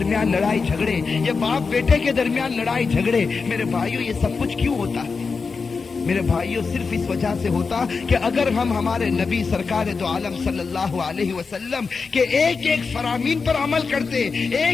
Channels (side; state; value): right; quieter; 4.8 dB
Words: لڑائی جھگڑے, یہ باپ بیٹے کے درمیان لڑائی جھگڑے, میرے بھائیوں یہ سب کچھ کیوں ہوتا ہے؟ میرے بھائیوں صرف اس وجہ سے ہوتا کہ اگر ہم ہمارے نبی سرکار دو عالم صلی اللہ علیہ وسلم کے ایک ایک فرامین پر عمل کرتے,